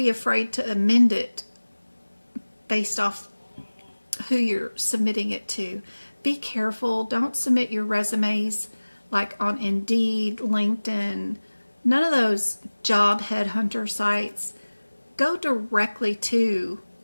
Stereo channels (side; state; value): both; inverted; correlation -1.00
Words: afraid to amend it based off who you're submitting it to. Be careful. Don't submit your resumes like on Indeed, LinkedIn, none of those job headhunter sites. Go directly to,